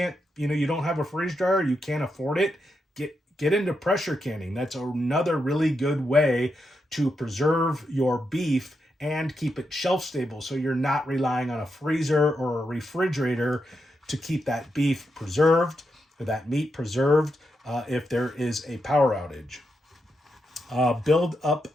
you don't have a freeze dryer, you can't afford it, get into pressure canning. That's another really good way to preserve your beef and keep it shelf stable, so you're not relying on a freezer or a refrigerator to keep that beef preserved or that meat preserved if there is a power outage. Build up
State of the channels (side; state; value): both; normal; correlation 0.84